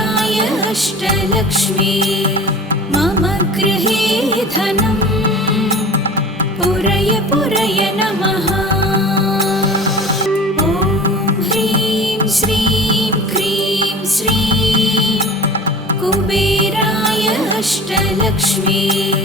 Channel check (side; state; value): both; normal; correlation 0.39